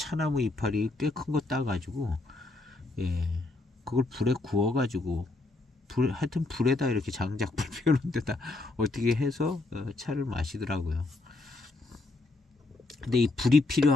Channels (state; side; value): quieter; right; 3.2 dB